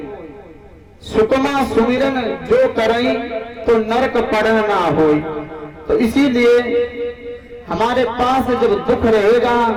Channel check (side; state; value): both; identical; correlation 1.00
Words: सुखमा सुमिरन जो करें तो नरक पड़न ना होई। तो इसीलिए हमारे पास जब दुख रहेगा